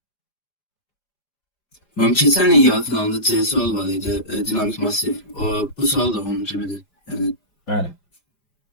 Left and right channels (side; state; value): right; late; 5.0 ms